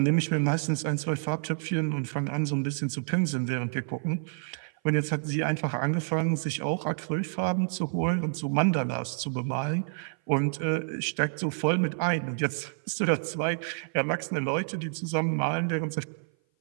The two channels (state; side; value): silent; left; 56 dB below the other